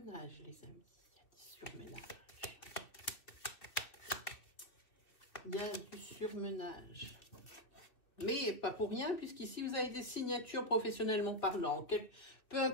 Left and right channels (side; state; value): right; late; 2.8 ms